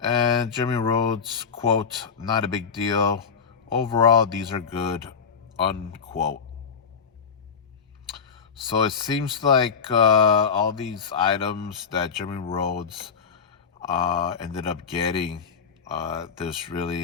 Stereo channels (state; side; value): quieter; right; 6.2 dB